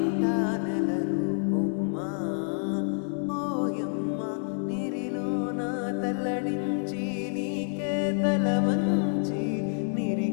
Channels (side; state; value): right; silent; 59 dB below the other